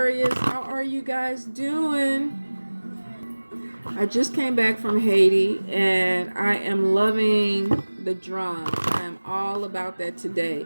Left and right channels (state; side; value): inverted; both; correlation -1.00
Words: How are you guys doing? I just came back from Haiti and I am loving the drums. I am all about that